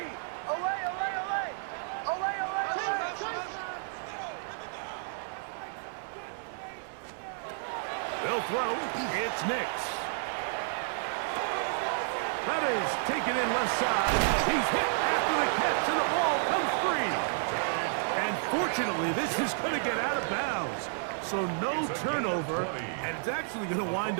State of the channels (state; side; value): silent; left; 57 dB below the other